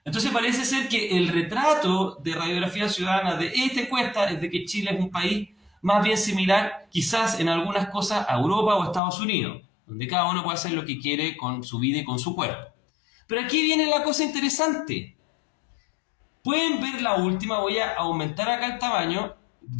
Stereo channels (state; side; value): drops out; right; at 9.0 s